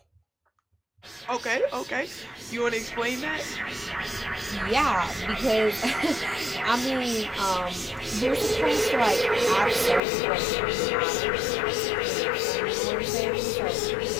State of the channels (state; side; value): drops out; right; at 10.0 s